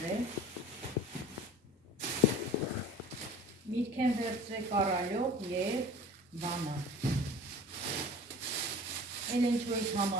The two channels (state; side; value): normal; both; correlation 0.41